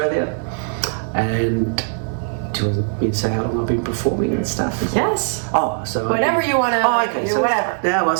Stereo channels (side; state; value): left; silent; 66 dB below the other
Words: And do you want me to say how long I've been performing and stuff? Yes. Oh, so Whatever you want to. Oh, okay. So whatever. now I